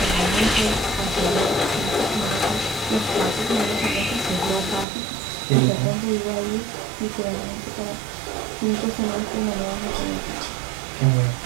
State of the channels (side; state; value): left; drops out; at 4.9 s